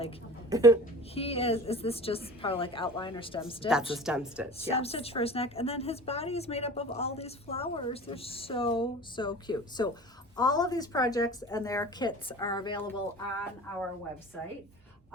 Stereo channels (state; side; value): normal; both; correlation 0.39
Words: he is this just part of like outline or stem stitch? That's a stem stitch, Stem yes. stitch for his neck, and then his body is made up of all these flowers. They're so cute. So all of these projects and their kits are available on our website.